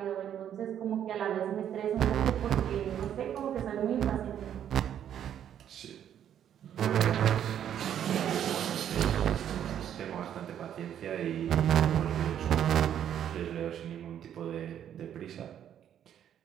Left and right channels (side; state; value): left; quieter; 9.9 dB